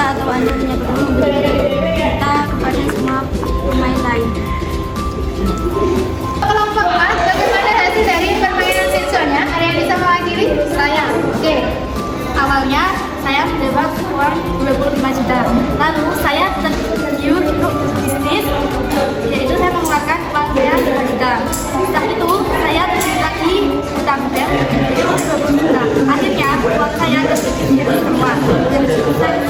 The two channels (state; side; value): identical; both; correlation 1.00